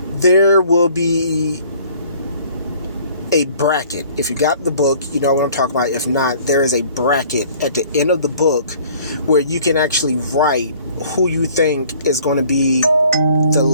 there will be a bracket. If you got the book, you know what I'm talking about. If not, there is a bracket at the end of the book where you can actually write who you think is going to be the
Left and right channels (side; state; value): both; inverted; correlation -0.54